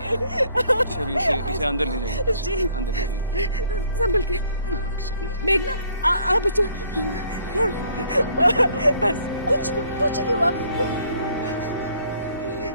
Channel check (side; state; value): both; inverted; correlation -0.62